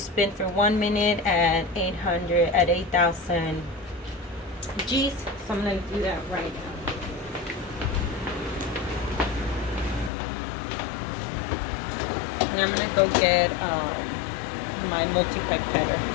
for 1 minute at 8,000 G's. So I'm going to do that right now. And I'm going to go get my multi-pipetter.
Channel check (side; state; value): right; drops out; at 10.1 s